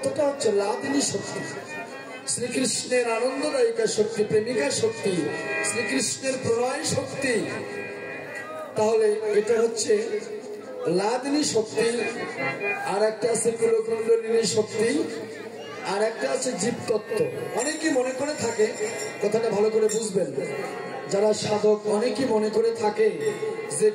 হচ্ছে লাদিনী শক্তি, শ্রীকৃষ্ণের আনন্দদায়িকা শক্তি, প্রেমিকা শক্তি, শ্রীকৃষ্ণের প্রণয় শক্তি। তাহলে এটা হচ্ছে লাদিনী শক্তি। আর একটা আছে কুলকুণ্ডলিনী শক্তি, আর একটা আছে জীবতত্ত্ব। অনেকে মনে করে থাকে, কথাটা ভালো করে বুঝবেন যারা সাধক, অনেকেই মনে করে থাকে যে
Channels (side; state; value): both; identical; correlation 1.00